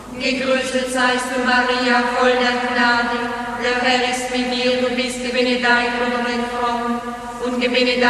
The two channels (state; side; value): identical; both; correlation 1.00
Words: Gegrüßet seist du, Maria, voll der Gnade, der Herr ist mit dir, du bist gebenedeit unter den Frauen, und